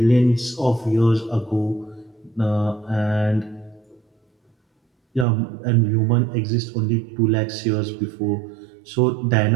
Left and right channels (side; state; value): left; drops out; at 5.2 s